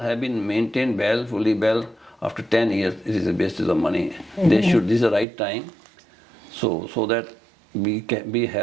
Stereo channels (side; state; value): left; drops out; at 5.2 s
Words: been maintained well, fully well. After 10 years, it is a waste of money. This is the right time, so that we